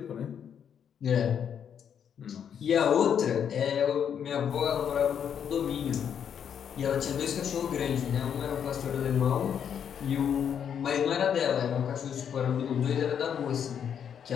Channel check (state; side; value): quieter; right; 8.2 dB